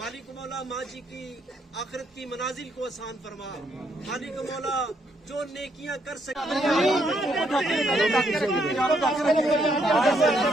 مالک مولا ماں جی کی آخرت کی منازل کو آسان فرما. مالک مولا جو نیکیاں کر سکے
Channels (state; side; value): normal; both; correlation 0.73